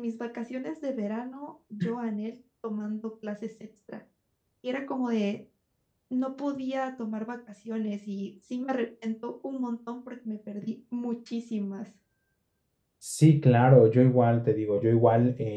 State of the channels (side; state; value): both; identical; correlation 1.00